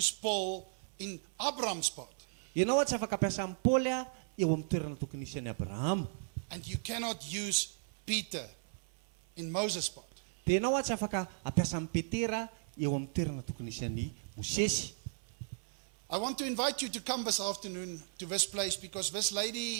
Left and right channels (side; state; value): left; silent; 54 dB below the other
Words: Paul in Abraham's part. Ianao tsy afaka ampiasa amin'ny Paoly eo amin'ny toerana tokony isy an'i Abraham. And you cannot use Peter in Moses' part. Dia ianao tsy afaka ampiasa amin'ny Petera eo amin'ny toerana tokony isy an'i Mosesy. I want to invite you to come this afternoon to this place because this